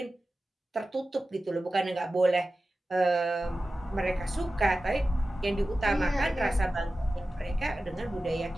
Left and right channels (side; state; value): both; normal; correlation 0.94